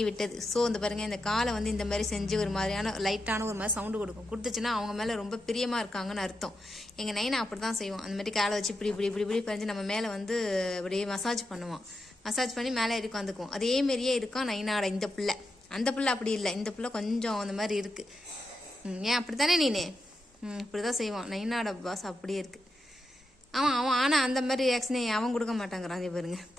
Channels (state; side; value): normal; both; correlation 0.87